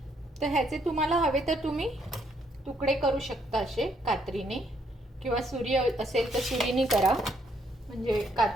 तर ह्याचे तुम्हाला हवे तर तुम्ही तुकडे करू शकता असे कात्रीने, किंवा सुरी असेल तर सुरीने करा. म्हणजे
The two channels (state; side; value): normal; both; correlation 0.71